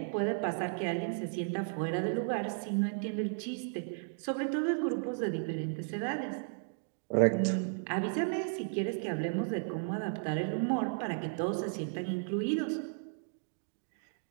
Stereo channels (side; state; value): left; silent; digital silence